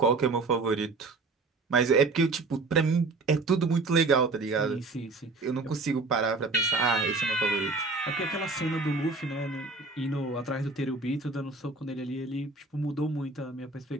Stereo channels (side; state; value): left; quieter; 3.7 dB